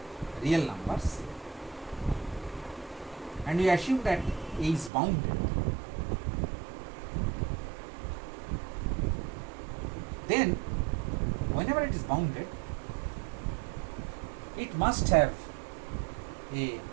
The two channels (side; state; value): left; drops out; at 4.9 s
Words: real numbers, and we assume that A is bounded, then whenever it is bounded, it must have a